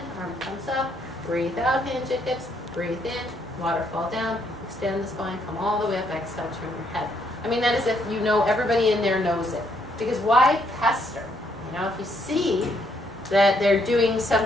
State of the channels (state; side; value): normal; both; correlation 0.72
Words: arm comes up, breathe out, hinge at hips, breathe in, waterfall down, extend the spine, come all the way up, exhale, turn your head. I mean, that is if you know, everybody in there knows it. Because why pester? You know, if you see that they're doing